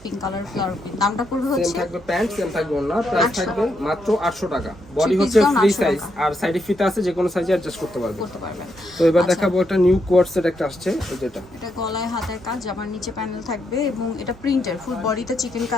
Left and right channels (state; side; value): normal; both; correlation 0.80